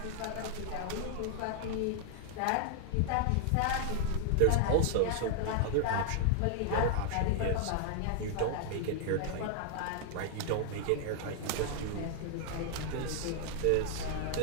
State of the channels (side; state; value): both; different; correlation -0.01